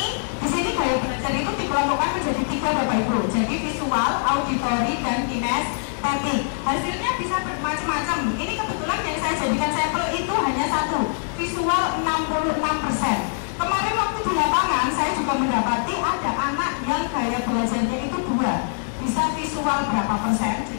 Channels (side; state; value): right; silent; digital silence